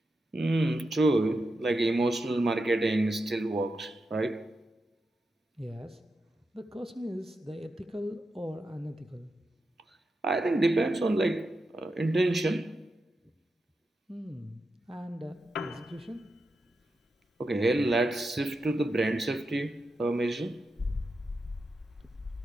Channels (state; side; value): normal; both; correlation 0.88